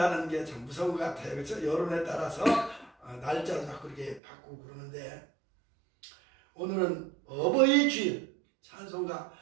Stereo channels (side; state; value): left; drops out; at 4.2 s